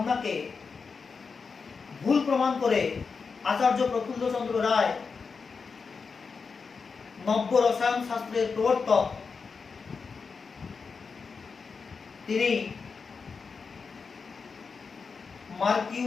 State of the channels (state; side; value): quieter; right; 5.1 dB